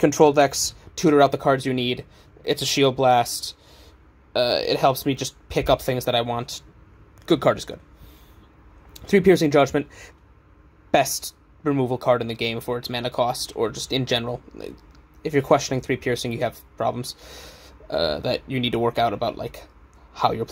decks, tutor out the cards you need. It's a Shield Blast. It helps me just pick up things that I want. Good card is good. 3 Piercing Judgment. Best removal card in the game for its mana cost, or just in general. If you're questioning 3 Piercing, you have problems that you need to work out about, like, how you're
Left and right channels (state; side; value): identical; both; correlation 1.00